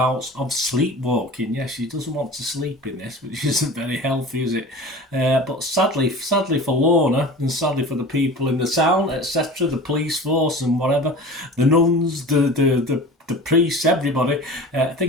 of sleepwalking. Yes, she doesn't want to sleep in this, which isn't very healthy, is it? But sadly for Lorna, and sadly for the people in the town, etc., the police force and whatever, the nuns, the priests, everybody,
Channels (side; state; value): both; normal; correlation 0.37